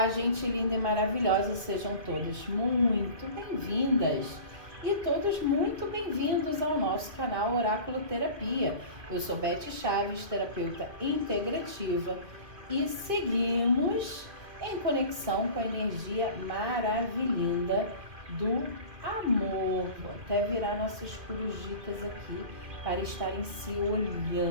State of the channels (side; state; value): left; late; 2.2 ms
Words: gente linda e maravilhosa, sejam todas muito bem-vindas e todos muito bem-vindos ao nosso canal Oráculo Terapia. Eu sou Beth Chaves, terapeuta integrativa, e seguimos em conexão com a energia maravilhosa do amor. Vou até virar nossas corujitas aqui para estarem se